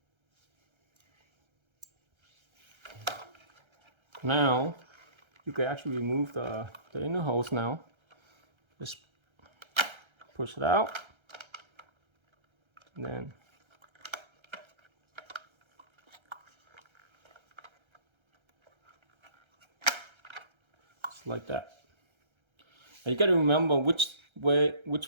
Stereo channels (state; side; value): late; left; 1.3 ms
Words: Now you can actually remove the inner hose now. Just push it out, and then just like that. And you got to remember which